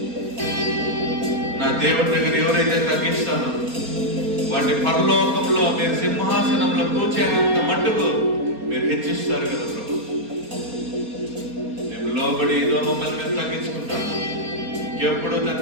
నా దేవుడి దగ్గర ఎవరైతే తగ్గిస్తానో వాటి పరలోకంలో మీరు సింహాసనంలో కూర్చేంత మట్టుకు మీరు హెచ్చిస్తారు కదా ప్రభు. మేము లోబడి ఏదో మమ్మల్ని మేము తగ్గించుకుంటాము. ఎప్పుడు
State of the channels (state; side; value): late; left; 4.3 ms